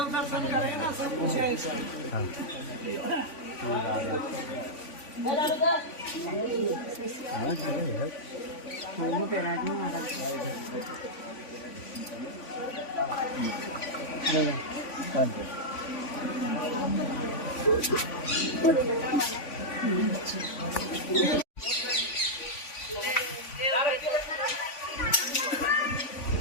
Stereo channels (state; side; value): late; right; 3.5 ms